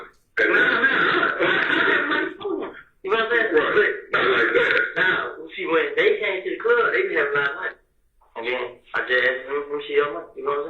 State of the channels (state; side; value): identical; both; correlation 1.00